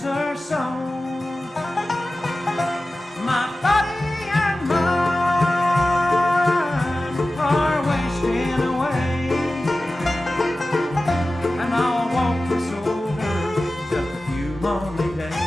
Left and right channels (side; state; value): both; normal; correlation 0.95